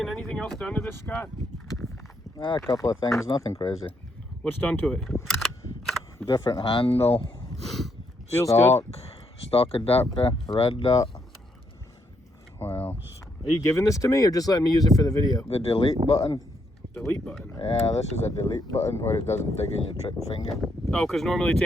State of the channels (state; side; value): normal; both; correlation 0.76